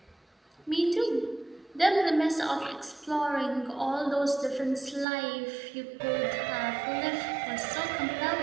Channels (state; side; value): drops out; left; at 5.1 s